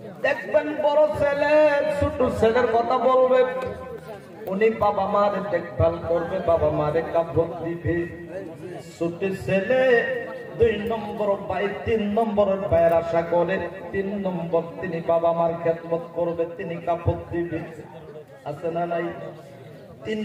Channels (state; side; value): identical; both; correlation 1.00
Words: দেখবেন বড় ছেলে ছোট ছেলের কথা বলবে, উনি বাবা মার দেখভাল করবে, বাবা মারে কাপড় দিবে। ছোট ছেলে 2 নম্বর ভাই 3 নম্বরের ভাইয়ের আশা করে, 3 নম্বর তিনি বাবা মার খেদমত করবে, তিনি কাপড় দিবে। আছে না নাই? 3